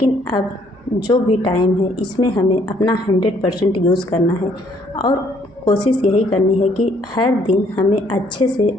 अब जो भी टाइम है इसमें हमें अपना 100% यूज़ करना है। और कोशिश यही करनी है कि हर दिन हमें अच्छे से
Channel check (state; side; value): normal; both; correlation 0.65